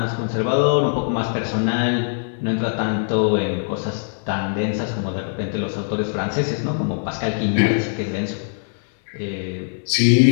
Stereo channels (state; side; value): silent; right; digital silence